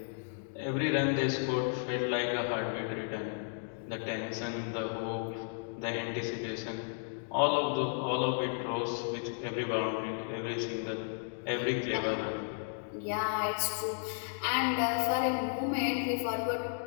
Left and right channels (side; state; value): right; silent; digital silence